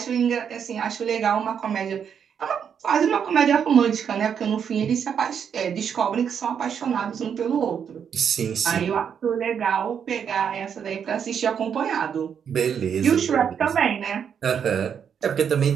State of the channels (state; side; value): quieter; left; 7.7 dB